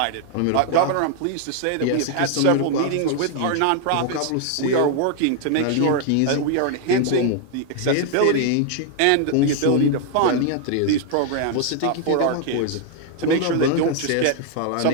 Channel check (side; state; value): both; different; correlation 0.00